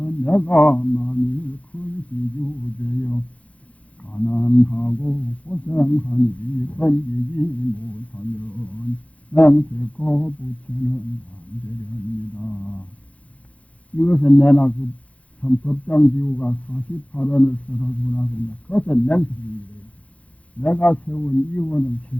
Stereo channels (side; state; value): right; late; 0.065 ms